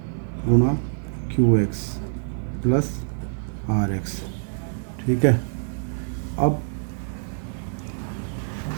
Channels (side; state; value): left; silent; digital silence